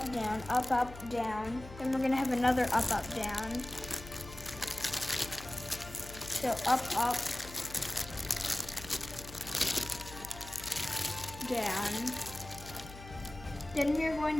down. Then we're gonna have another up, down. So up, down. Then we're going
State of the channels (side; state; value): left; noise; hum, 15 dB below the sound